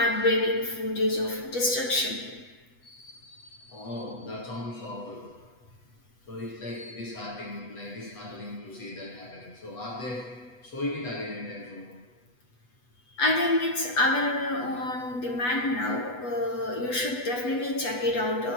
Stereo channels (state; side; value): late; right; 8.1 ms